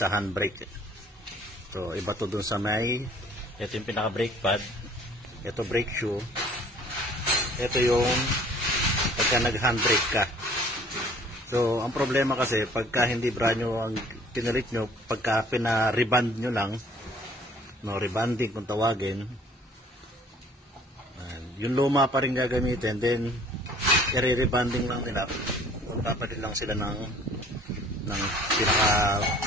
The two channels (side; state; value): both; normal; correlation 0.54